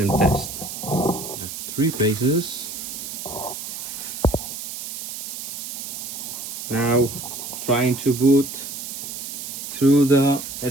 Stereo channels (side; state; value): right; noise; hiss, 7 dB below the sound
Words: test. 3 phases. Now trying to boot through the